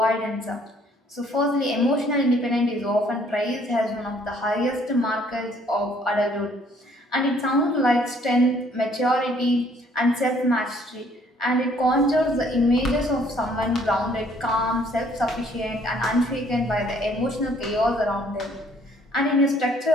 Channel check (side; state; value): both; normal; correlation 0.62